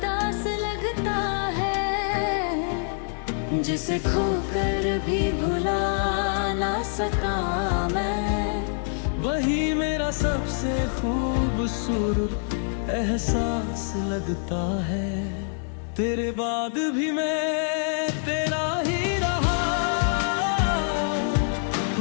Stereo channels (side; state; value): right; silent; 61 dB below the other